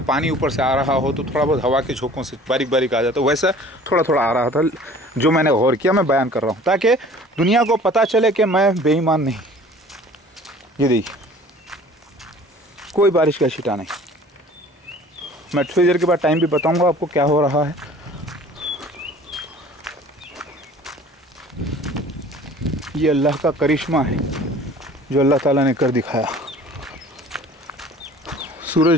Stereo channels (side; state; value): both; normal; correlation 0.48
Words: पानी ऊपर से आ रहा हो तो थोड़ा बहुत हवा के झोंकों से बारीक बारीक आ जाता, वैसा थोड़ा थोड़ा आ रहा था। जो मैंने गौर किया, मैं बयान कर रहा हूँ ताकि दुनिया को पता चले कि मैं बेईमान नहीं। ये देखिए, कोई बारिश का छींटा नहीं। मैं थोड़ी देर के बाद टाइम भी बताऊंगा आपको क्या हो रहा है। ये अल्लाह का करिश्मा है जो अल्लाह ताला ने कर दिखाया।